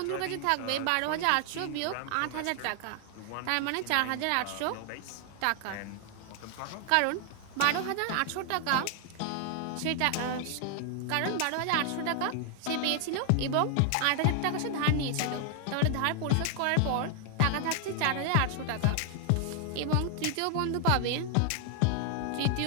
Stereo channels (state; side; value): different; both; correlation 0.00